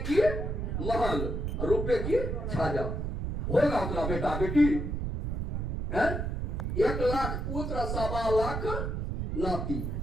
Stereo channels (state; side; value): noise; right; rumble, 2 dB below the sound